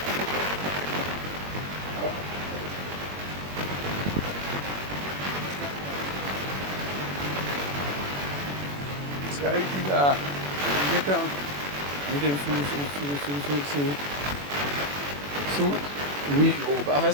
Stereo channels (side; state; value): left; late; 21 ms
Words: Esse cara aqui da. Ele oui, ou pas faire